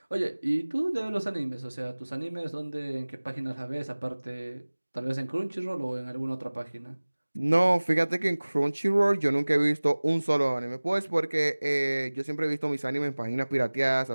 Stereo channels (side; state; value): both; inverted; correlation -1.00